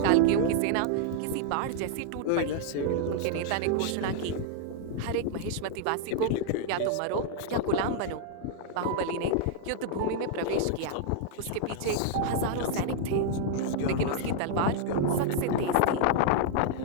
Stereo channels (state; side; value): different; both; correlation -0.01